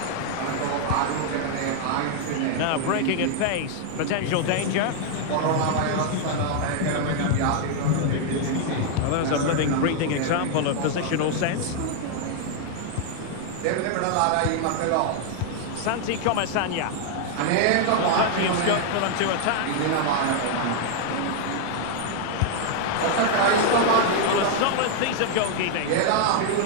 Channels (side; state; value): both; different; correlation 0.00